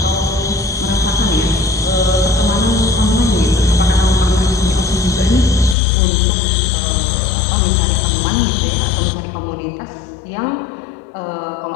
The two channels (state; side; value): drops out; right; at 5.8 s